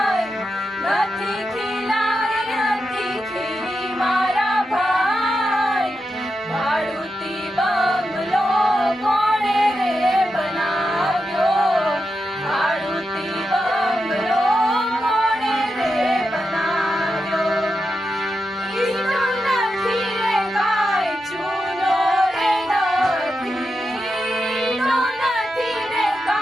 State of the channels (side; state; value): both; normal; correlation 0.88